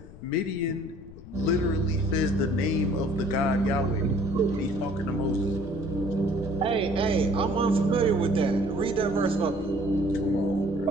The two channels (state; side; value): noise; left; rumble, 18 dB below the sound